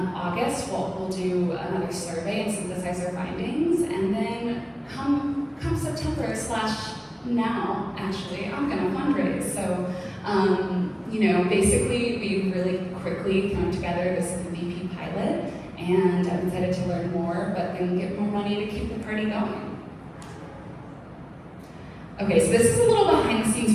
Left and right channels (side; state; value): both; identical; correlation 1.00